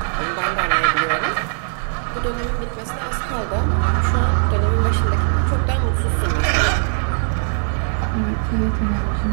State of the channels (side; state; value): left; silent; 61 dB below the other